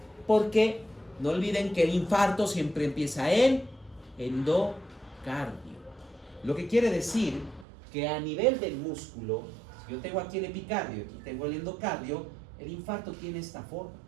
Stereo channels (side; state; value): left; drops out; at 7.7 s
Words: Porque no olviden que el infarto siempre empieza en endocardio. Lo que quiere decir que a nivel del músculo, si yo tengo aquí el epicardio y aquí tengo el endocardio, el infarto tiene esta forma.